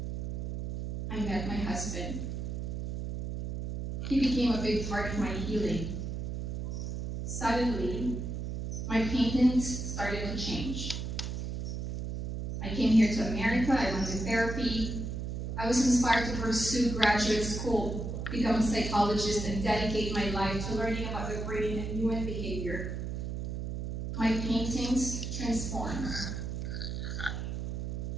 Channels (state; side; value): noise; right; hum, 4 dB below the sound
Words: I met my husband. He became a big part of my healing. Suddenly, my paintings started to change. I came here to America, I went to therapy. I was inspired to pursue graduate school, become a psychologist, and dedicate my life to learning about the brain and human behavior. My paintings transformed.